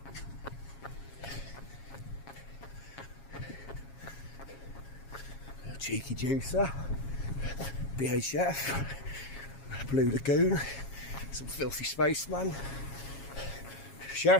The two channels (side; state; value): right; late; 7.3 ms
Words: A cheeky juicer. BHF. Blue Lagoon. Some filthy spaceman.